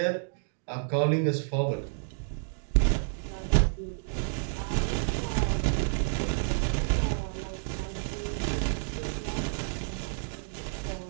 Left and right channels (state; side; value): silent; left; digital silence